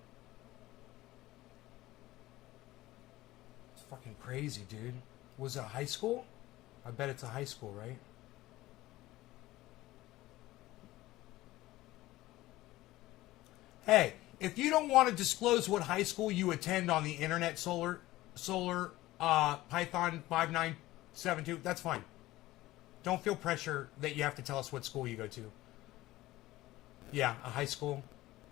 Fucking crazy, dude. Was it a high school? I bet it's a high school, right? Hey, if you don't want to disclose what high school you attend on the internet, Solar Python 5972, that's fine. Don't feel pressure that you have to tell us what school you go to. Yeah, a high school.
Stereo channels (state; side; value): quieter; right; 17.3 dB